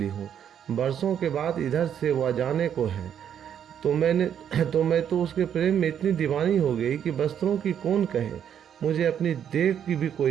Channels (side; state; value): left; quieter; 9.0 dB